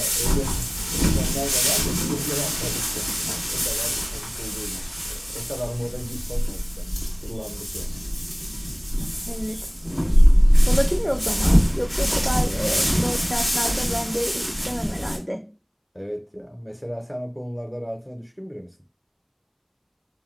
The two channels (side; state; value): both; identical; correlation 1.00